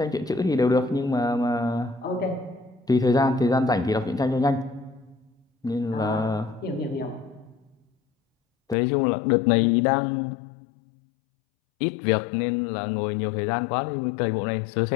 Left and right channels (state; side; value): drops out; right; at 8.8 s